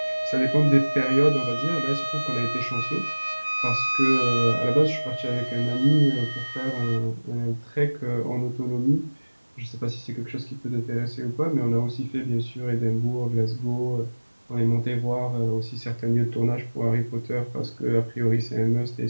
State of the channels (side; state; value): both; inverted; correlation -1.00